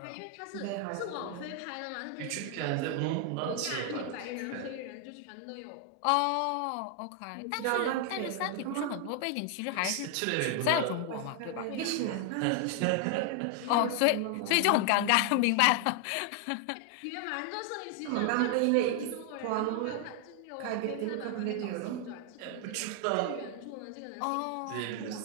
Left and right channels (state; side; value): different; both; correlation 0.00